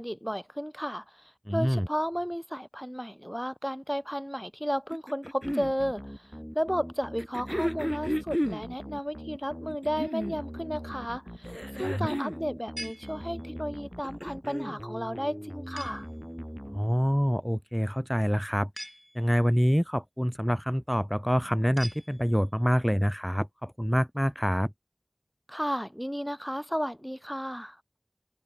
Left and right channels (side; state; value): both; identical; correlation 1.00